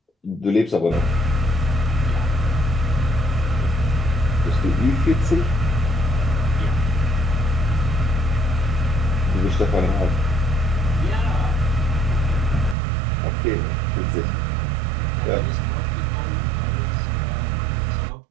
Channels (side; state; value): left; drops out; at 12.8 s